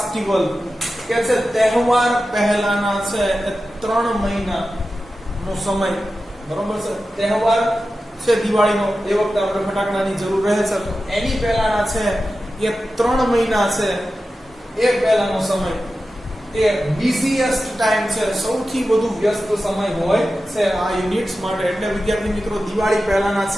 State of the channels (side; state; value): both; normal; correlation 0.93